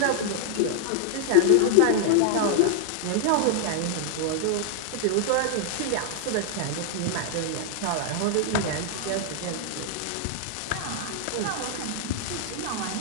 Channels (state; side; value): different; both; correlation 0.00